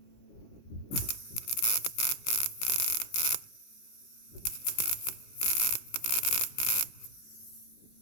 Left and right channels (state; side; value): late; right; 17 ms